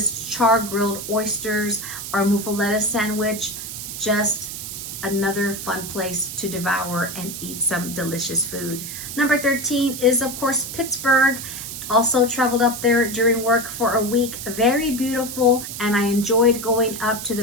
char-grilled oysters, or muffaletta sandwich. Just another fun place to devour and eat some delicious food. Number 13 is, of course, Pittsburgh. Also traveled up there during work for a week. Very beautiful, and I enjoyed going up to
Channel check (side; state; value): right; noise; hiss, 8 dB below the sound